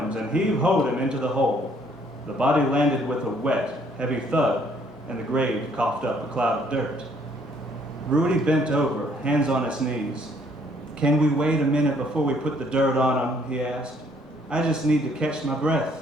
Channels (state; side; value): normal; both; correlation 0.64